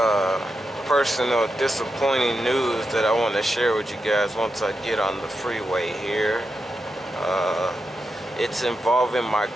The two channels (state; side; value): normal; both; correlation 0.87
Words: personal disappointing news that I want to share with you guys once I get on the freeway here. It's involving my